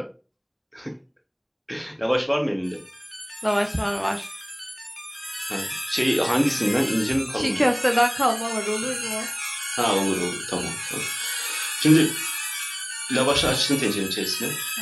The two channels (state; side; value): identical; both; correlation 1.00